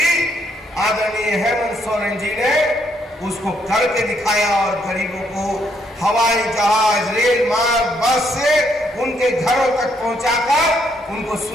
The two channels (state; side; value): normal; both; correlation 0.73